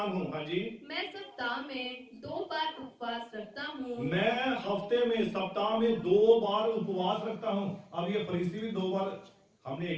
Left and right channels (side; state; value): both; identical; correlation 1.00